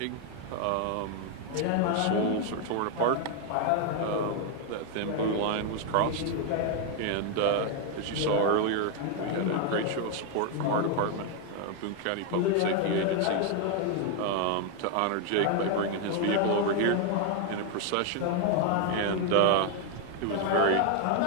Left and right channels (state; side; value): different; both; correlation 0.01